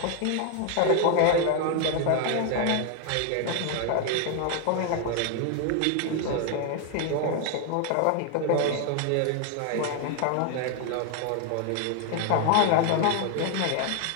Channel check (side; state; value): both; different; correlation 0.00